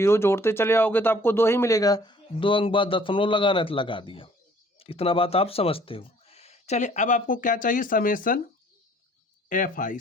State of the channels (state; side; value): normal; both; correlation 0.57